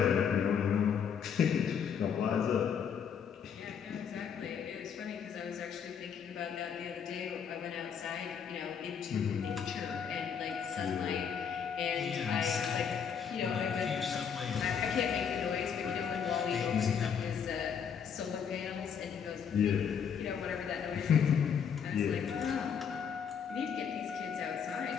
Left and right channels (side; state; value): right; quieter; 7.3 dB